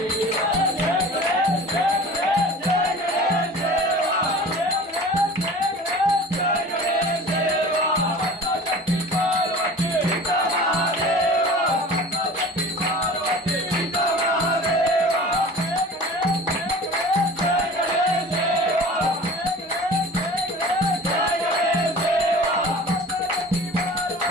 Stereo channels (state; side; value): normal; both; correlation 0.40